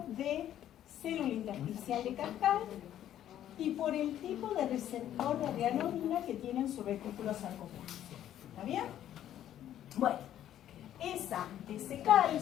célula intersticial de Cascade y por el tipo de receptor de rhianodina que tiene en su retículo sarcoplástico. ¿Está bien? Bueno, ese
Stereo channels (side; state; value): right; quieter; 11.4 dB